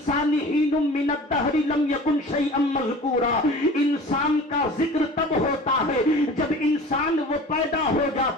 حين من الدهر لم يكن شيئا مذكورا۔ انسان کا ذکر تب ہوتا ہے جب انسان وہ پیدا ہو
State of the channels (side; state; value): both; normal; correlation 0.41